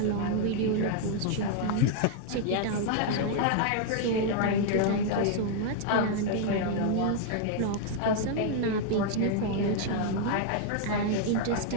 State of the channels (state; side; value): different; both; correlation 0.00